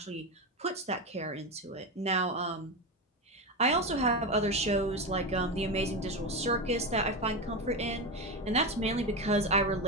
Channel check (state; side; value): normal; both; correlation 0.16